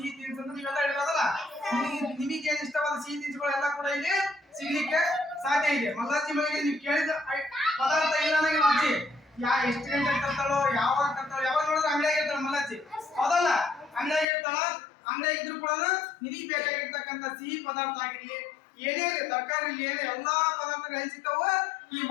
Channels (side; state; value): right; drops out; at 14.2 s